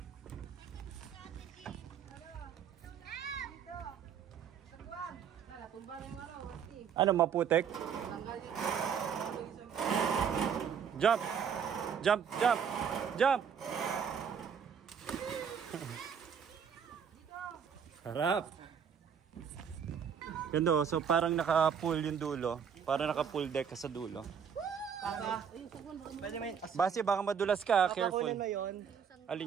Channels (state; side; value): quieter; left; 7.4 dB